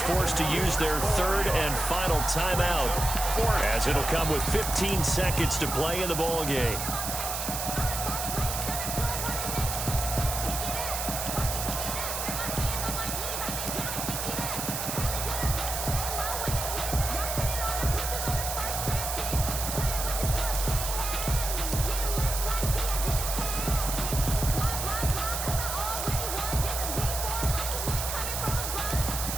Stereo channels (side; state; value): right; noise; hiss, 3 dB below the sound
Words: to use their 3rd and final timeout, as it'll come with 15 seconds to play in the ball game.